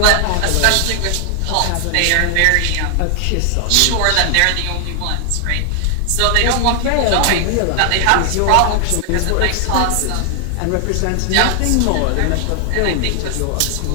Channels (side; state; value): both; different; correlation 0.00